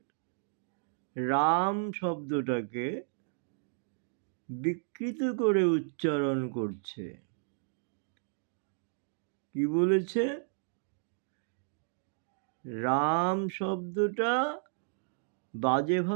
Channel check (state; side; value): silent; left; digital silence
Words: রাম শব্দটাকে বিকৃত করে উচ্চারণ করছে। কি বলেছে? রাম শব্দটা বাজে